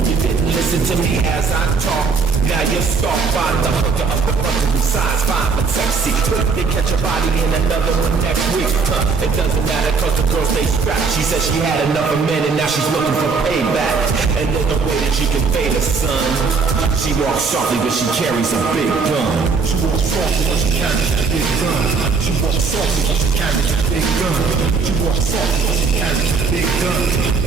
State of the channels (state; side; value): quieter; left; 4.9 dB